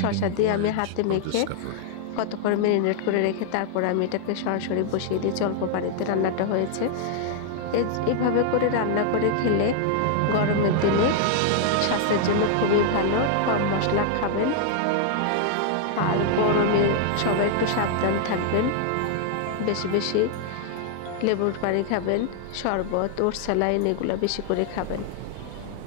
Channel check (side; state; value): both; different; correlation 0.00